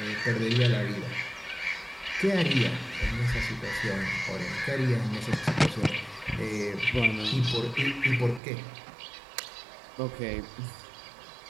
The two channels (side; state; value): left; drops out; at 8.4 s